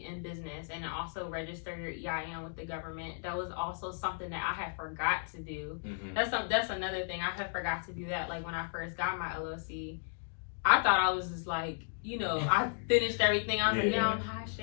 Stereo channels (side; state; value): right; silent; digital silence